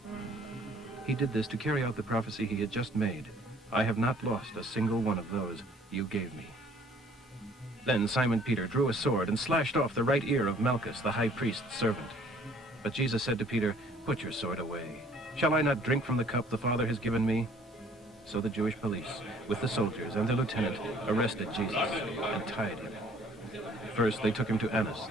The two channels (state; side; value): normal; both; correlation 0.57